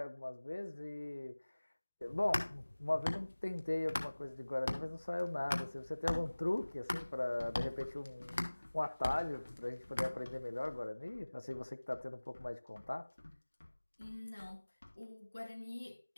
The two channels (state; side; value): inverted; both; correlation -1.00